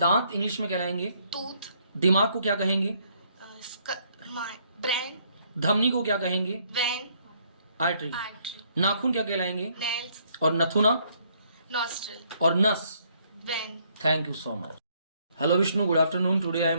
इंग्लिश में कहलाएंगे। Tooth. दिमाग को क्या कहेंगे? Brain. धमनी को क्या कहेंगे? Vein. आर्टरी। Artery. नाखून क्या कहलाएंगे? Nails. और नथुना Nostril. और नस। Vein. Thank you so much. Hello Vishnu, good afternoon, today I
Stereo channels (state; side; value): inverted; both; correlation -0.68